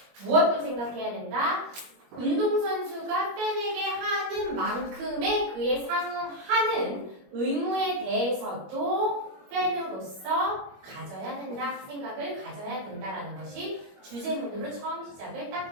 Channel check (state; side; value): late; left; 21 ms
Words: 무엇도 생각해야 된다? 운동선수가 팬에게 하는 만큼의 그에 상응하는 의무에 대해서도 팬으로서 가져야 된다, 생각을 가져야 된다라는 것이 주제문으로 처음 시작을